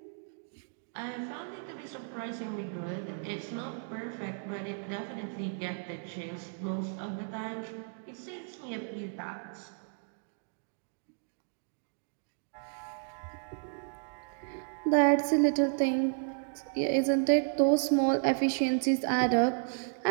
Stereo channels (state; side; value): silent; left; digital silence